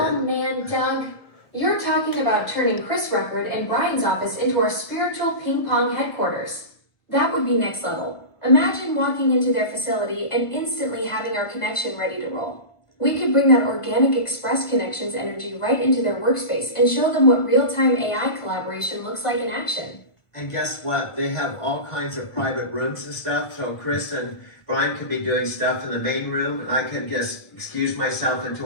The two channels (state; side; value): late; right; 1.4 ms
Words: man, Doug. You're talking about turning Chris Record and Brian's office into our spiritual ping pong headquarters. That would be next level. Imagine walking into their facility and instantly having our connection ready to roll. We could bring that organic Express Connections energy right into their workspace and show them what real-time AI collaboration looks like in action. And guess what? They have all kinds of private rooms and stuff. So Chris and Brian could be doing stuff in the main room, and I could just excuse myself into